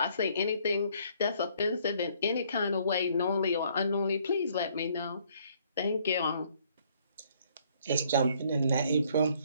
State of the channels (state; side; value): inverted; both; correlation -0.65